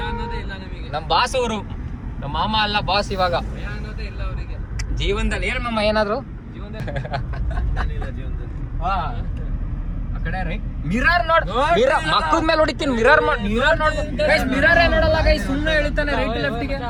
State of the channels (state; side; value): identical; both; correlation 1.00